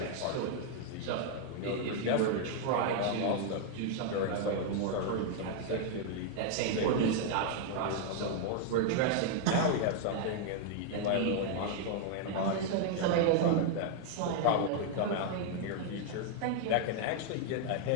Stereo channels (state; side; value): different; both; correlation 0.00